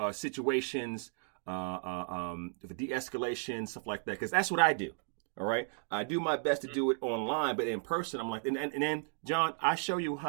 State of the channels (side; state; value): left; silent; 55 dB below the other